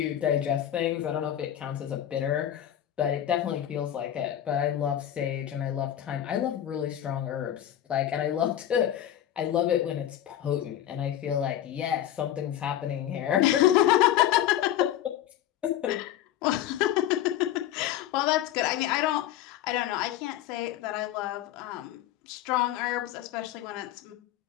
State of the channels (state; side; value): quieter; right; 11.7 dB